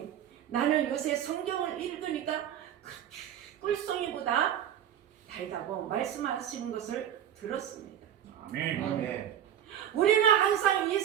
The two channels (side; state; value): left; quieter; 10.2 dB